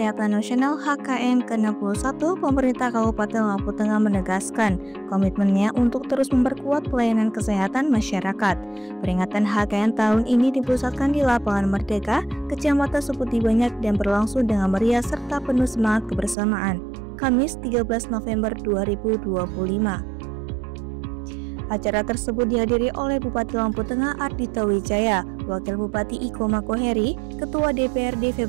Nasional HKN ke-61, pemerintah Kabupaten Lampung Tengah menegaskan komitmennya untuk terus memperkuat pelayanan kesehatan masyarakat. Peringatan HKN tahun ini dipusatkan di Lapangan Merdeka, Kecamatan Seputi Banyak dan berlangsung dengan meriah serta penuh semangat kebersamaan. Kamis 13 November 2025. Acara tersebut dihadiri oleh Bupati Lampung Tengah Ardhito Wijaya, Wakil Bupati Iko Makoheri, Ketua DPRD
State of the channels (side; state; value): left; drops out; at 16.4 s